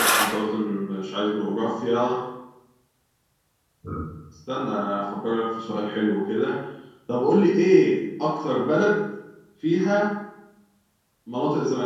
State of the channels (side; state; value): both; identical; correlation 1.00